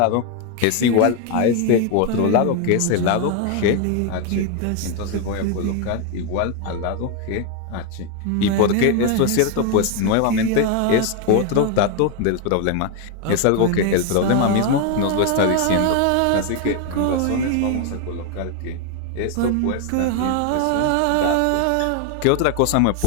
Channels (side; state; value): both; different; correlation 0.01